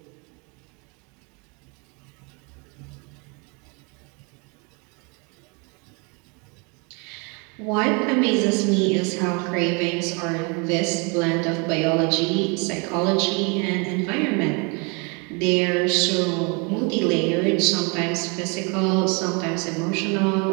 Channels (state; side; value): quieter; left; 32.0 dB